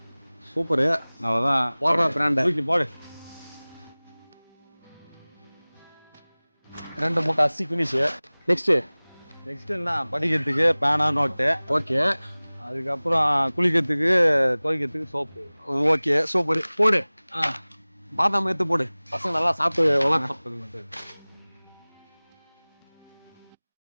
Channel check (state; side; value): inverted; both; correlation -1.00